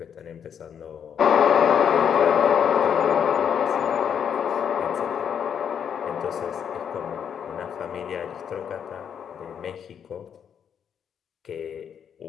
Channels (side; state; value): right; quieter; 8.1 dB